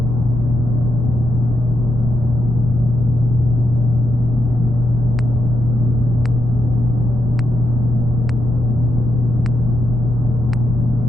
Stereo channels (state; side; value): normal; both; correlation 0.81